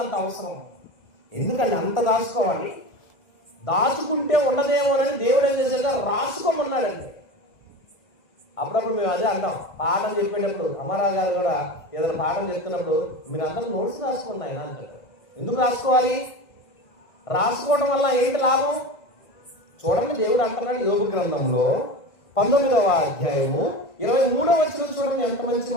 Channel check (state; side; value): late; right; 1.6 ms